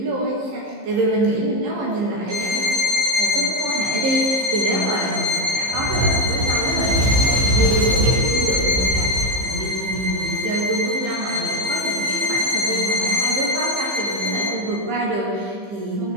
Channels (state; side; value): late; left; 15 ms